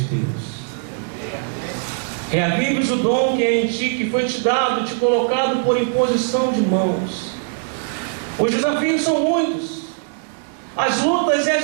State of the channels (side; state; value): left; silent; digital silence